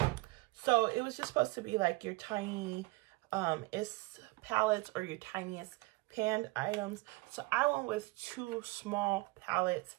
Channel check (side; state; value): left; quieter; 22.7 dB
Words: so it was just supposed to be like your tiny palettes or your tiniest panned items. So I went with two small palettes